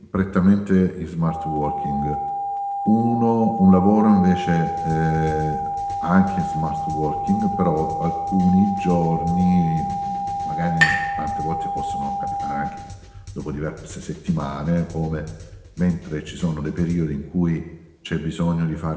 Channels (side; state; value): both; identical; correlation 1.00